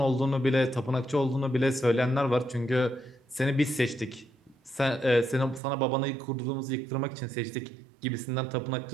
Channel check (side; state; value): left; drops out; at 5.6 s